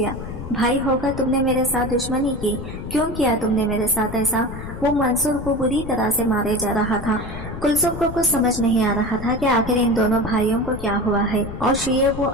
भाई होकर तुमने मेरे साथ दुश्मनी की, क्यों किया तुमने मेरे साथ ऐसा? वो मंसूर को बुरी तरह से मारे जा रहा था। कुलसुम को कुछ समझ नहीं आ रहा था कि आखिर इन दोनों भाइयों को क्या हुआ है और शुएब वो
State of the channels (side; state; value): left; noise; rumble, 9 dB below the sound